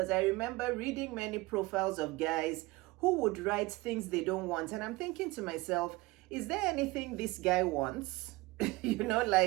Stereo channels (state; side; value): quieter; left; 21.6 dB